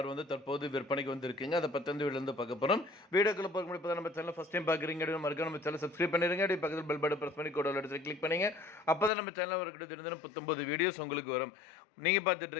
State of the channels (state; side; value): drops out; right; at 9.1 s